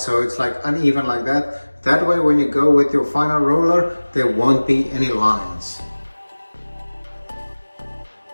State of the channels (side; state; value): both; inverted; correlation -1.00